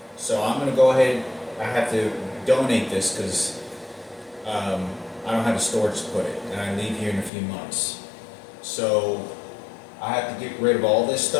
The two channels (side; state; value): right; drops out; at 7.3 s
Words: So I'm going to go ahead, I have to donate this because I don't have a storage to put it, and I leave here in a few months. So I have to get rid of all this